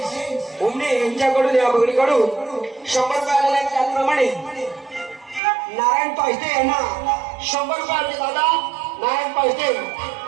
उमने यांच्याकडून या बहिणीकडून 100 रुपये आलेले आहेत. त्याचप्रमाणे नारायण पायस्ते यांना 100 रुपये आले. दादा नारायण पायस्ते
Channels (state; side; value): drops out; left; at 5.4 s